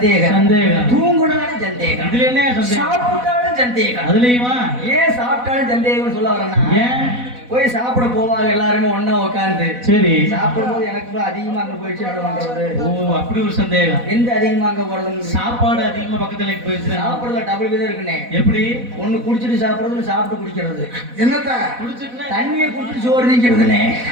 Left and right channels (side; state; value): left; late; 4.1 ms